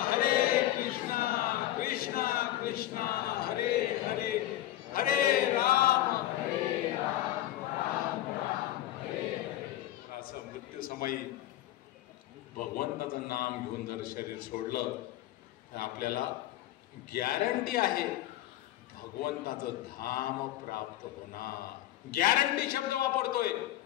कृष्णा कृष्णा हरे हरे, हरे राम राम राम हरे हरे. असं मृत्यू समयी भगवंताचं नाम घेऊन जर शरीर सोडलं तर आपल्याला गॅरंटी आहे भगवंताचं धाम प्राप्त होणार. गॅरंटी शब्द वापरतोय,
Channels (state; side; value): quieter; right; 14.4 dB